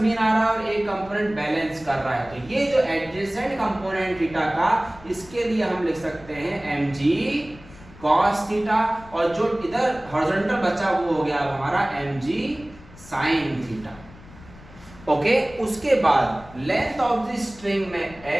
मीन आ रहा है और एक कंपोनेंट बैलेंस कर रहा है, तो ये जो एडजेसेंट कंपोनेंट थीटा का, इसके लिए हम लिख सकते हैं mg cos थीटा, और जो इधर हॉरिजॉन्टल बचा वो हो गया हमारा mg sin थीटा। ओके, उसके बाद लेंथ ऑफ द स्ट्रिंग में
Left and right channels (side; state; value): left; noise; rumble, 21 dB below the sound